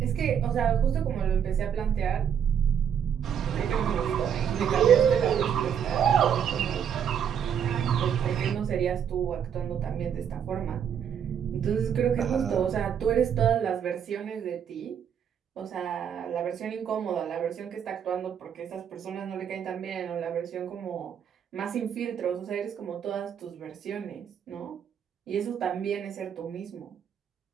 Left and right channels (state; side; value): quieter; left; 8.3 dB